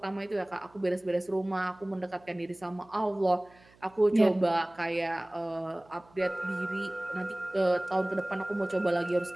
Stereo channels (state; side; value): noise; right; hum, 28 dB below the sound